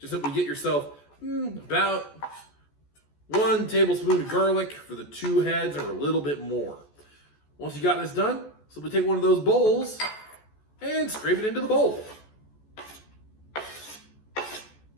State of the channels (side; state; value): right; late; 14 ms